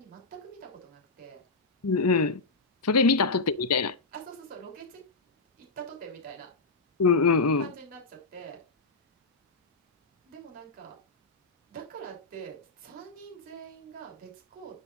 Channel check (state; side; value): quieter; right; 3.8 dB